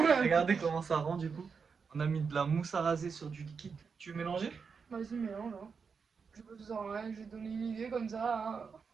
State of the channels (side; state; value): left; quieter; 5.6 dB